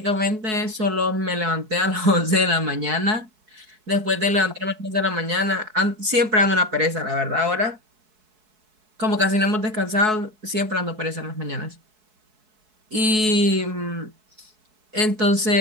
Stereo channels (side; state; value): left; late; 4.6 ms